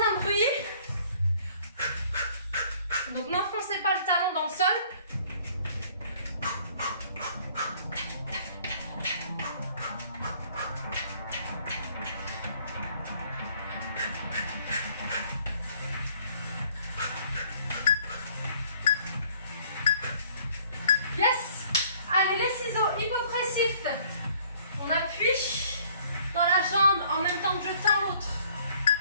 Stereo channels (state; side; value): inverted; both; correlation -0.58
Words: bruit. Donc n'enfoncez pas le talon dans le sol. Yes. Allez, les ciseaux hypopressifs. On appuie dans la jambe en même temps que je tends l'autre.